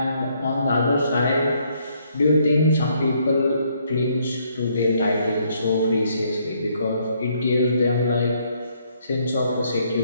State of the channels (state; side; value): inverted; both; correlation -0.70